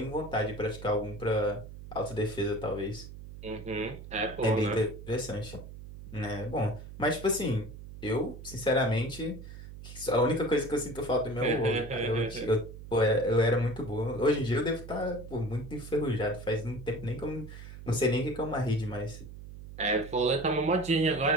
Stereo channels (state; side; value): noise; right; hum, 13 dB below the sound